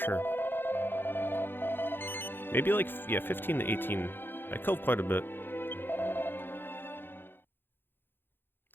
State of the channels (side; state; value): right; late; 0.10 ms